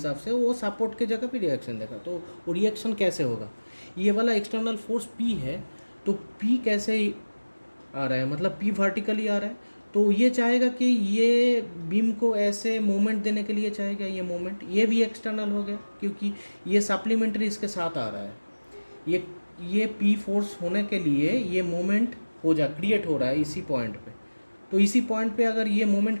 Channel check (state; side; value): inverted; both; correlation -1.00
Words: से वो सपोर्ट के जगह पे रिएक्शन देगा। तो वो रिएक्शन कैसे होगा, ये वाला एक्सटर्नल फोर्स पी है, तो पी कैसे आ रहा है, मतलब पी वर्टिकली आ रहा है। तो ये चाहेगा कि ये बीम को ऐसे मूवमेंट देने के लिए चाहेगा, ये मूवमेंट ये भी एक्सटर्नल हो गया क्योंकि ये सप्लीमेंट्री इसके साथ आ रहा है। ये पी फोर्स होने के लिए ये मूवमेंट क्रिएट हो रहा है इसी पॉइंट पे। तो इसी पॉइंट पे अगर ये